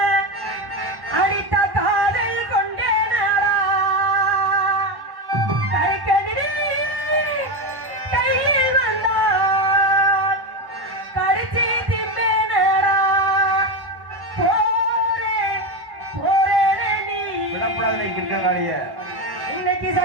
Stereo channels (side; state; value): left; late; 1.1 ms